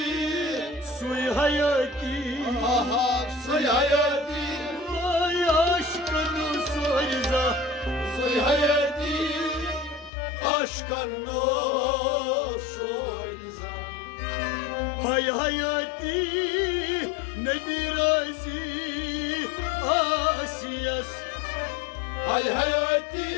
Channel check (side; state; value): right; drops out; at 10.1 s